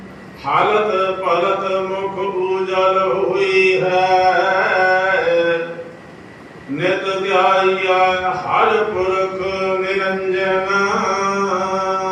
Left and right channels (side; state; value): both; identical; correlation 1.00